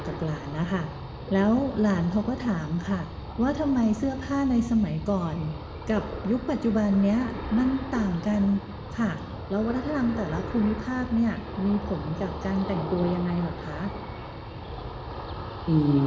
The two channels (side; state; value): both; identical; correlation 1.00